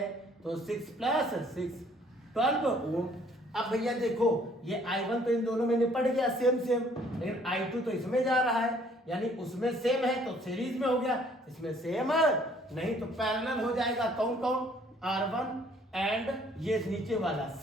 तो 6 प्लस 6 12 ओम। अब भैया देखो ये I1 तो इन दोनों में निपट गया सेम सेम, लेकिन I2 तो इसमें जा रहा है, यानी उसमें सेम है तो सीरीज में हो गया, इसमें सेम नहीं तो पैरेलल हो जाएगा। कौन कौन? R1 एंड ये नीचे वाला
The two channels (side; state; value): both; normal; correlation 0.60